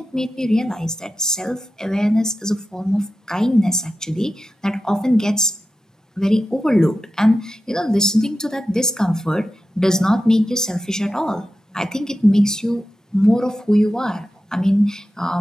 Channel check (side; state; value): both; normal; correlation 0.92